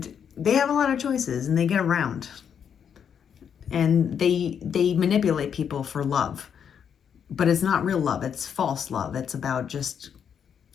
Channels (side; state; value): right; quieter; 7.9 dB